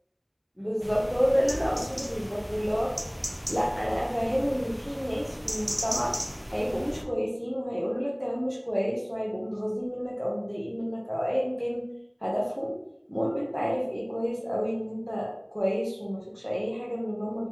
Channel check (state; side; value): identical; both; correlation 1.00